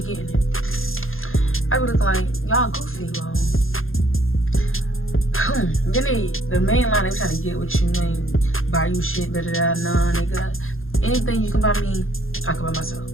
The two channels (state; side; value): late; right; 0.60 ms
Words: getting it. I be looking like y'all goofy, bro. Then the main line they trying to get with you, ain't buy you shit, da da da. Nah, nigga. Anything you can buy me, I can buy myself.